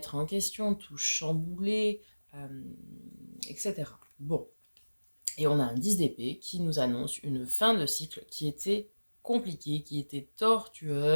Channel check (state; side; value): inverted; both; correlation -1.00